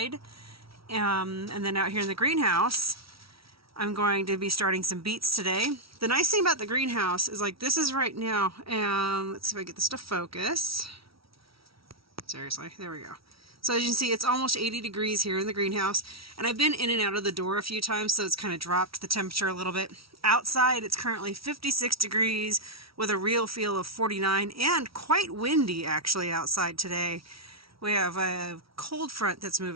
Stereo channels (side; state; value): left; late; 0.75 ms